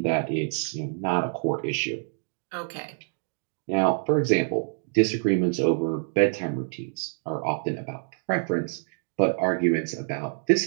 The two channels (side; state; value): left; silent; 55 dB below the other